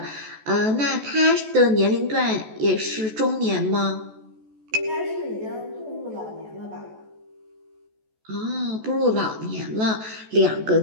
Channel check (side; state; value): left; late; 14 ms